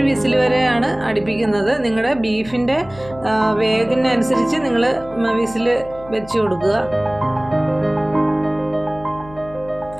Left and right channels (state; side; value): noise; left; hum, 19 dB below the sound